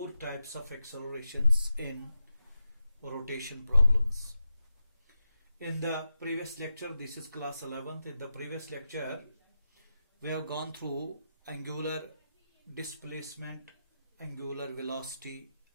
types of accelerations in rotation problems. In the previous lecture, this is class 11th. In the previous lecture, we have gone through angular displacement, angular velocity,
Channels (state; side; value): inverted; both; correlation -0.89